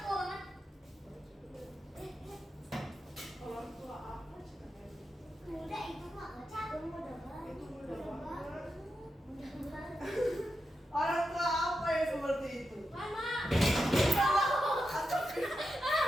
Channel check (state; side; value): normal; both; correlation 0.88